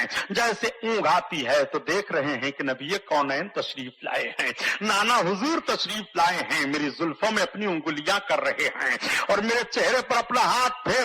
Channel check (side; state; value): both; identical; correlation 1.00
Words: جیسے اونگ آتی ہے تو دیکھ رہے ہیں کہ نبی کونین تشریف لائے ہیں, نانا حضور تشریف لائے ہیں, میری زلفوں میں اپنی انگلیاں کر رہے ہیں اور میرے چہرے پر اپنا ہاتھ